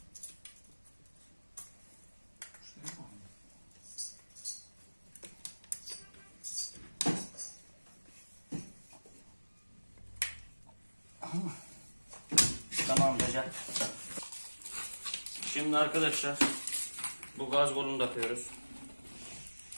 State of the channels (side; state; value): both; inverted; correlation -1.00